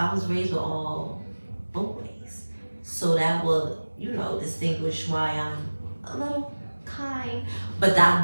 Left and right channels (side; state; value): both; inverted; correlation -1.00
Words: was raised with all boys. So that will, you know, distinguish why I'm a little kind. But